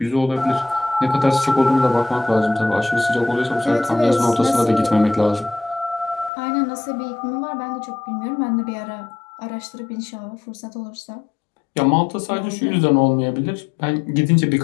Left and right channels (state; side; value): drops out; right; at 6.3 s